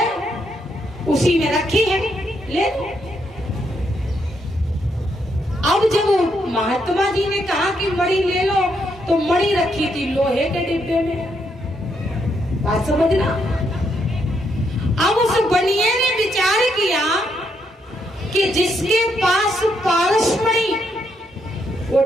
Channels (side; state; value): both; normal; correlation 0.77